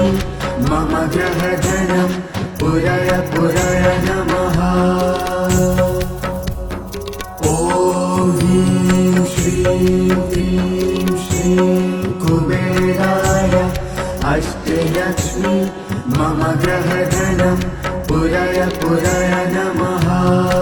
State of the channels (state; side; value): identical; both; correlation 1.00